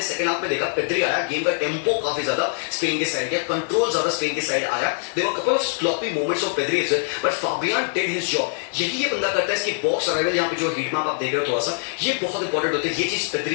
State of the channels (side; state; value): right; silent; 60 dB below the other